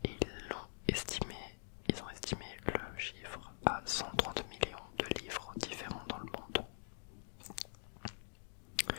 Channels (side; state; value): right; silent; digital silence